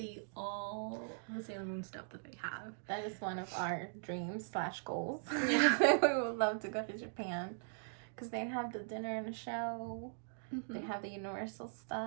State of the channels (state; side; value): silent; left; digital silence